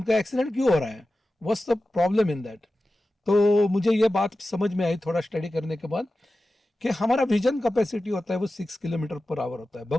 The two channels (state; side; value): normal; both; correlation 0.94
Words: एक्सीडेंट क्यों हो रहा है, what's the problem in that. तो मुझे ये बात समझ में आई थोड़ा स्टडी करने के बाद, कि हमारा विजन कैपेसिटी होता है वो 6 किलोमीटर पर आवर होता है।